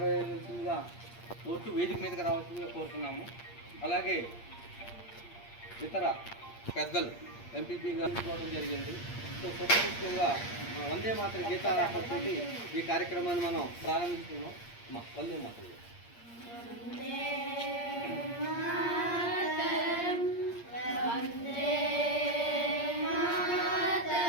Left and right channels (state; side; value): late; right; 8.6 ms